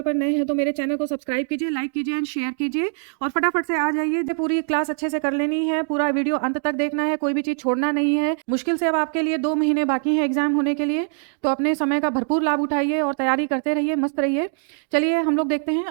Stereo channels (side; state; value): left; silent; 55 dB below the other